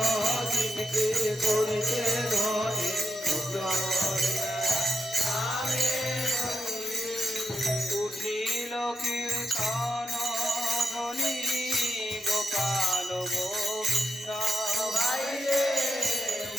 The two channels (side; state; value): both; normal; correlation 0.84